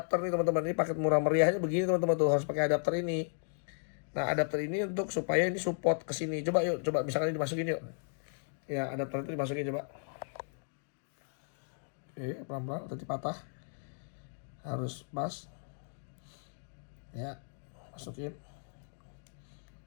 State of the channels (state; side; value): silent; right; digital silence